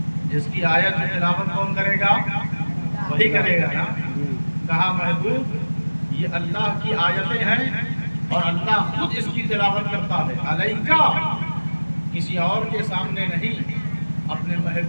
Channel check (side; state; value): both; inverted; correlation -1.00